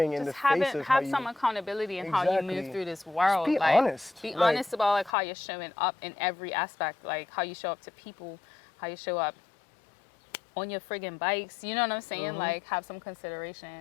in the face of how have you... some accountability in how you move Exactly. through this world. Just be like, honest. Be Like- honest about like how you're showing up in every aspect, like how you show up to people, how you show up on your friggin' bikes. You know what I'm saying? Like, have some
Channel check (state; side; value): drops out; right; at 5.1 s